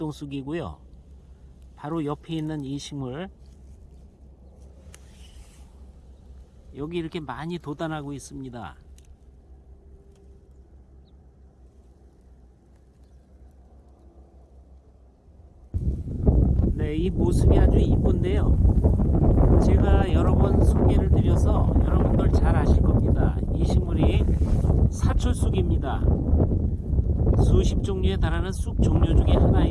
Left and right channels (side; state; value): both; identical; correlation 1.00